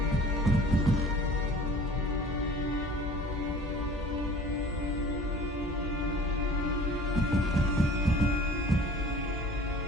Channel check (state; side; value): normal; both; correlation 0.46